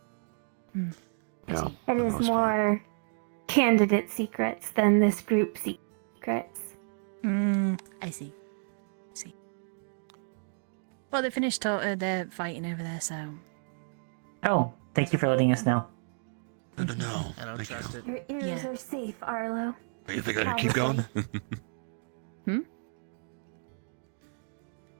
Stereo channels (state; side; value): silent; left; digital silence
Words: Yeah. It is more candidate secrets than this group secrets. I see. Well, they finished they're fighting over there, so. Oh, thank you for letting us know. No. I don't trust it. Your ears are safe, Arlo. You think I can keep going?